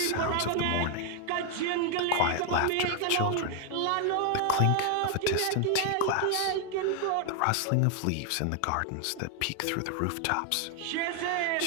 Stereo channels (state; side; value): different; both; correlation 0.01